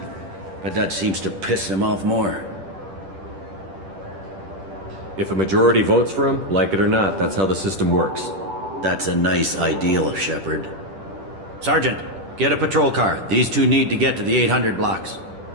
But that seems to piss him off more. If a majority votes for him, like it or not, that's how the system works. That's a nice ideal, Shepard. Sergeant, get a patrol car. These two need to get to the 800 blocks.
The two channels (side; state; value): left; late; 10 ms